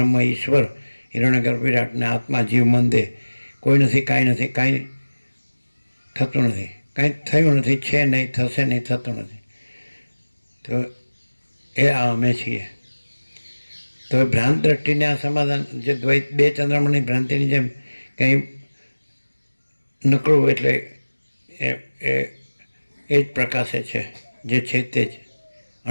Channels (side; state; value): both; inverted; correlation -1.00